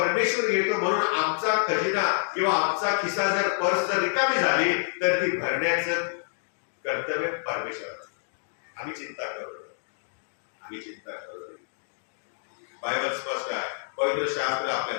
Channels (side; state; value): right; silent; digital silence